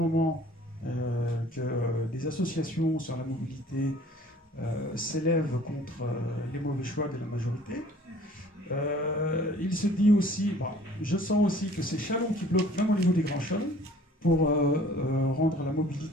que des associations sur la mobilité s'élèvent contre les mauvais choix de la majorité. Il se dit aussi, bon, je sens aussi que c'est Châlons qui bloque même au niveau des grands chalons pour rendre la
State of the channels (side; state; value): both; normal; correlation 0.52